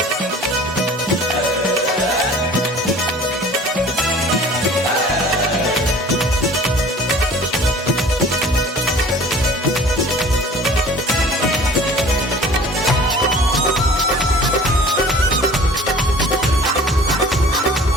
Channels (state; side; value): normal; both; correlation 0.46